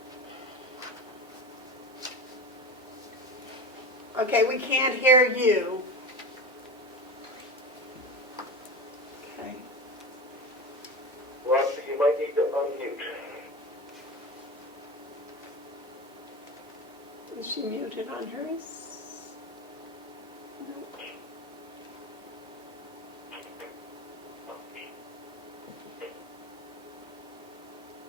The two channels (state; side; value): normal; both; correlation 0.26